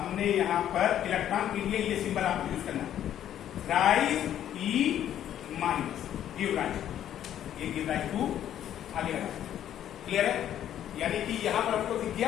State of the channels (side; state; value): right; quieter; 10.9 dB